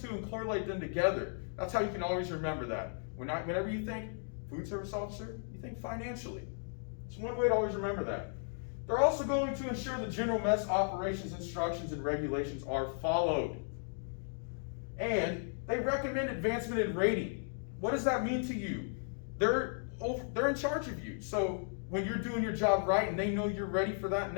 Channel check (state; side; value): silent; right; digital silence